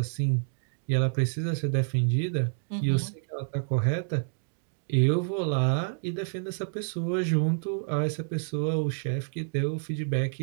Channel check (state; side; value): silent; left; digital silence